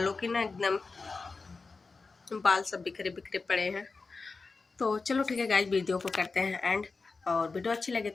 की ना एकदम बाल सब बिखरे बिखरे पड़े हैं। तो चलो ठीक है गाइज, वीडियो को करते हैं एंड। और वीडियो अच्छी लगे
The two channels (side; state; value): right; quieter; 4.1 dB